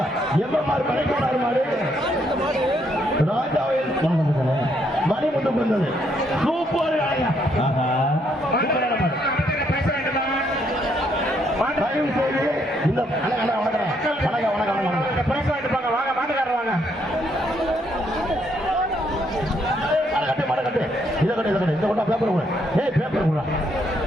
எம்எம்ஆர் மணிக்கொண்டார் மாடு ராஜாவில் மணிமுத்துக்கு வந்தது. சூப்பர் தயவு செய்து இந்த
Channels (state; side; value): normal; both; correlation 0.72